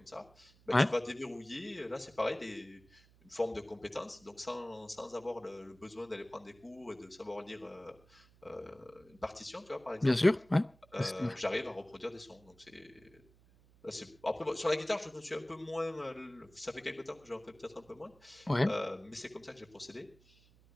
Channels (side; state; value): right; noise; hum, 27 dB below the sound